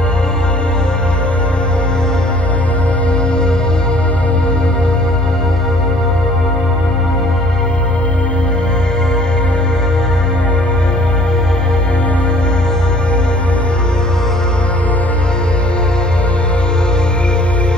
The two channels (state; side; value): noise; left; rumble, 22 dB below the sound